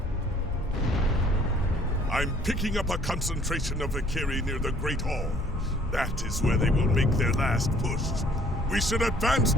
I'm picking up a concentration of Valkyrie near the Great Hall. That is where they will make their last push. We should advance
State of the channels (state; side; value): normal; both; correlation 0.58